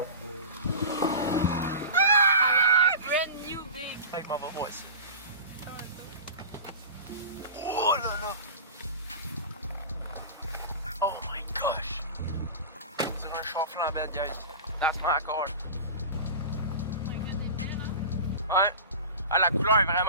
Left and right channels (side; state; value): both; inverted; correlation -0.32